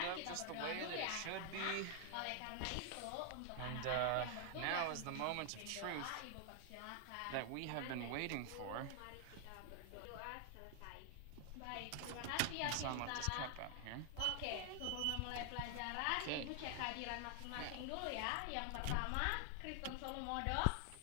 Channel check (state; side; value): different; both; correlation 0.00